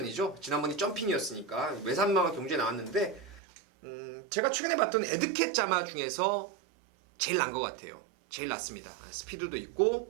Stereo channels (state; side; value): drops out; left; at 3.4 s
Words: 지난번이 점핑이었으니까 외산마가 경주에 나왔는데 제가 최근에 봤던 에드캣 자마 중에서 제일 난 것 같아요. 제일 낫습니다. 스피드도